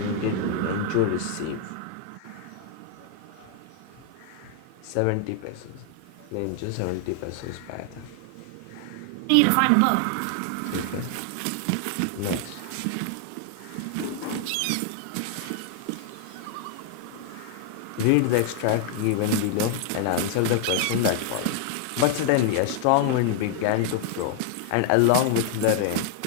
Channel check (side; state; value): both; different; correlation 0.00